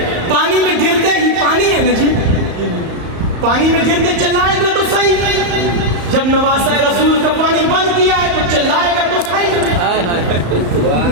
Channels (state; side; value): late; left; 34 ms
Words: پانی میں گرتے ہی, پانی ہے نا جی, پانی میں گرتے چلائے گا تو صحیح. جب نواسہ رسول کا پانی بند کیا ہے تو چلائے گا تو صحیح. ہائے ہائے